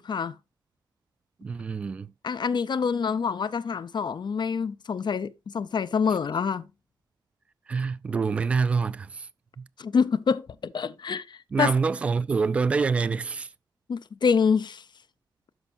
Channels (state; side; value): normal; both; correlation 0.71